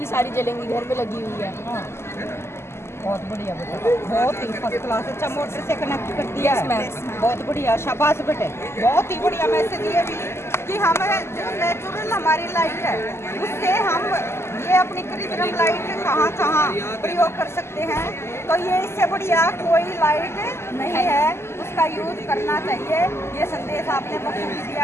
सारी जलेंगी, घर में लगी हुई है। बहुत बढ़िया बेटा, बहुत ही फर्स्ट क्लास। अच्छा मोटर से कनेक्ट कर दिया है, बहुत बढ़िया, शाबाश बेटे, बहुत ही बढ़िया मैसेज ये भी कि हम जो नेचुरल हमारी लाइट है उससे हम ये अपनी कृत्रिम लाइट कहाँ कहाँ प्रयोग कर सकते हैं। तो ये इससे बढ़िया कोई लाइट नहीं है, उसका यूज करना चाहिए। ये संदेश आपने बखूबी दिया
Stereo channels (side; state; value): right; late; 0.12 ms